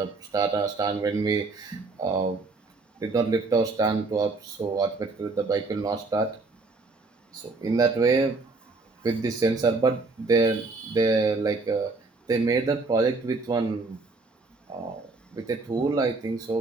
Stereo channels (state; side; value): quieter; left; 3.7 dB